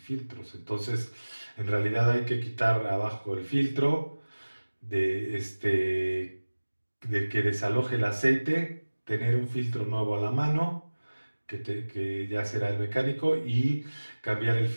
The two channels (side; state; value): both; inverted; correlation -1.00